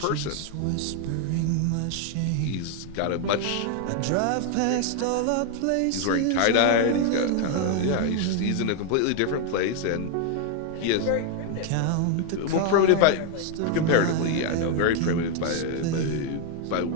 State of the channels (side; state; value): both; different; correlation 0.01